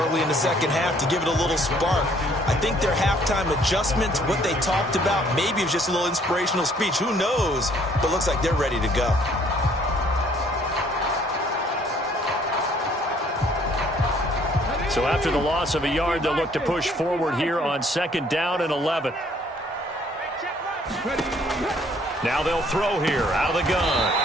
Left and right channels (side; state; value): both; normal; correlation 0.61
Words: in the second half to give it a little spark. I think their halftime adjustment, what they talked about, maybe it was just a little inspirational speech. Who knows? But looks like they're ready to go. So after the loss of a yard, they'll look to push forward here on 2nd down and 11. Now they'll throw here out of the